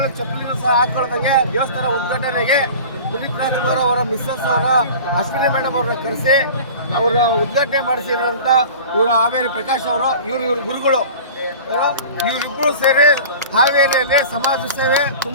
ಚಪ್ಪಲಿನೂ ಸಹ ಹಾಕೊಳ್ಳೋದಂಗೆ ದೇವಸ್ಥಾನ ಉದ್ಘಾಟನೆಗೆ ಪುನೀತ್ ರಾಜ್ಕುಮಾರ್ ಅವರ ಮಿಸ್ಸಸ್ ಅವರ ಅಶ್ವಿನಿ ಮೇಡಮ್ ಅವ್ರನ್ನ ಕರೆಸಿ ಅವರ ಉದ್ಘಾಟನೆ ಮಾಡಿಸಿರೋಂಥ ಇವರು ಹಾವೇರಿ ಪ್ರಕಾಶ್ ಅವರು, ಇವ್ರ ಗುರುಗಳು. ಇವರಿಬ್ಬರು ಸೇರಿ ಹಾವೇರಿಯಲ್ಲಿ ಸಮಾಜ ಸೇವೆ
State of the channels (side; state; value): both; inverted; correlation -0.39